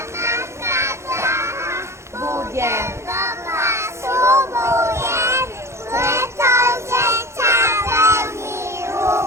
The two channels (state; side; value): late; left; 0.13 ms